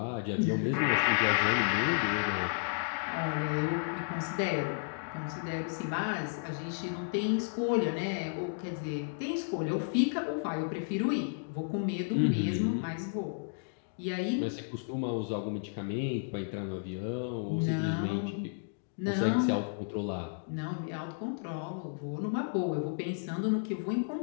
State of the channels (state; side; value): silent; right; digital silence